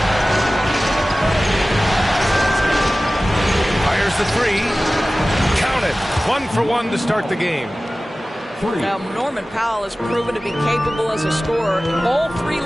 Fires the 3. Count it. 1 for 1 to start the game. Now, Norman Powell has proven to be capable as a scorer. All 3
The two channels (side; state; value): both; normal; correlation 0.97